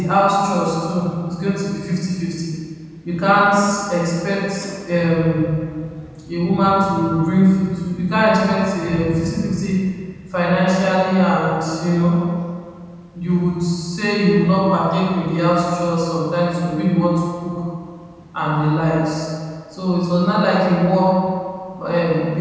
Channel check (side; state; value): both; identical; correlation 1.00